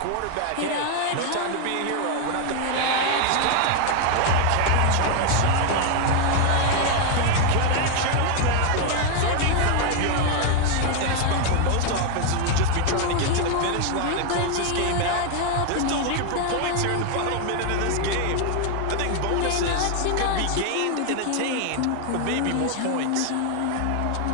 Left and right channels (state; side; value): different; both; correlation 0.01